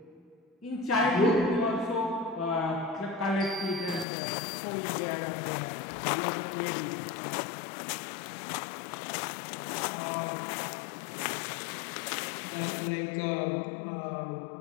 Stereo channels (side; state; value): right; drops out; at 4.0 s